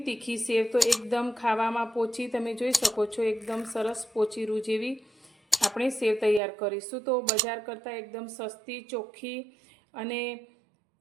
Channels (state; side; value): drops out; left; at 6.4 s